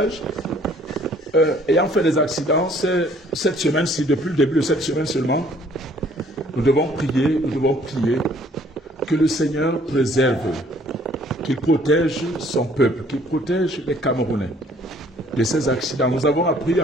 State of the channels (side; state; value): both; normal; correlation 0.59